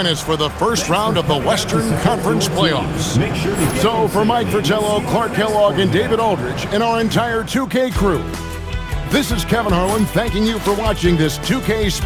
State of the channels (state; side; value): identical; both; correlation 1.00